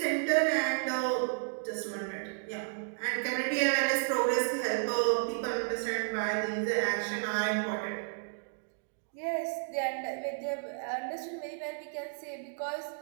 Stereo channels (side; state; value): left; silent; digital silence